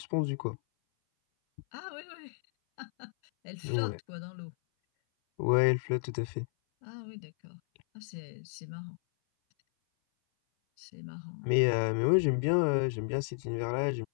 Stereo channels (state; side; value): silent; right; 56 dB below the other